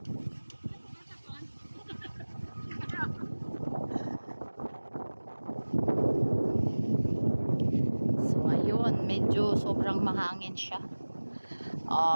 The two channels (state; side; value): inverted; both; correlation -1.00